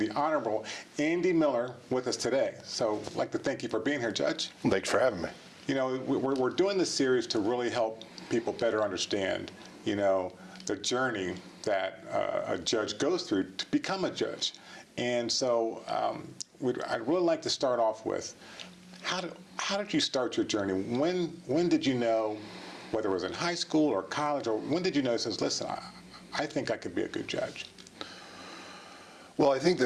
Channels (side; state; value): both; identical; correlation 1.00